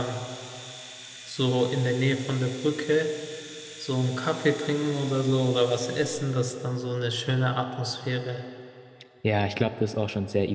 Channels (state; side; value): identical; both; correlation 1.00